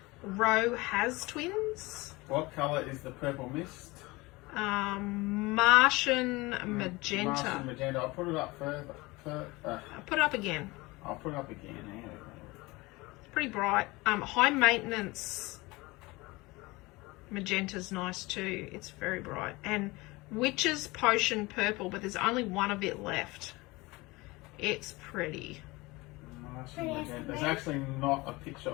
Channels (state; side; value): quieter; right; 22.6 dB